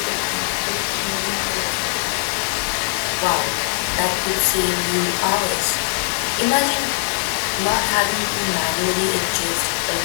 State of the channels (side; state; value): right; silent; digital silence